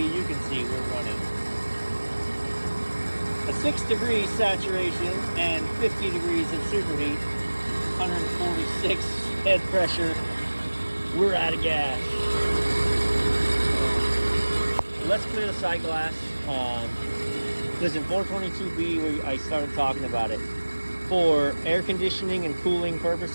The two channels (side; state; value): both; inverted; correlation -1.00